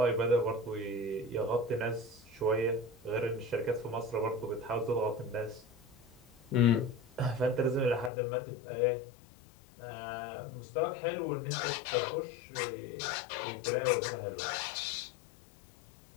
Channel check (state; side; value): drops out; right; at 8.1 s